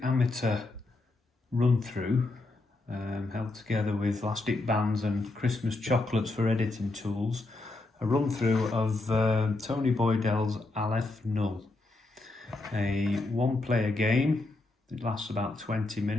amateur run-through held together with elastic bands and Christmas chocolates for editing tools. A run-through of Tony Boydell's Aleph Null, a one-player game. It lasts about 20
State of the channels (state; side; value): quieter; right; 3.1 dB